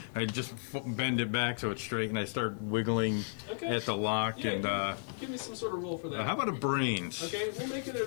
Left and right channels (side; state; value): right; silent; digital silence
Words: I just bend it back so it's straight, and I start wiggling at the lock. Yeah, and give me some sort of roll for that. how about a brains? Okay, we'll make it